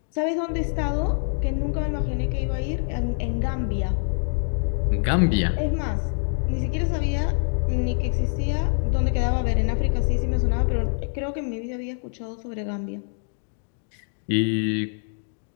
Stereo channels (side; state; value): right; silent; digital silence